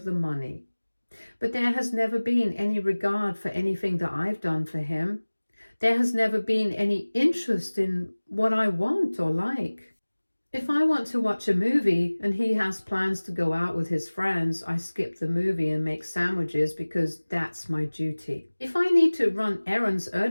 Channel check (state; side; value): inverted; both; correlation -1.00